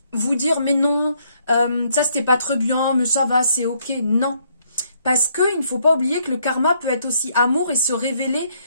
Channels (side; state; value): both; inverted; correlation -0.70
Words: vous dire, mais non, ça c'était pas très bien, mais ça va, c'est ok. Non. Parce qu'il ne faut pas oublier que le karma peut être aussi amour et se révéler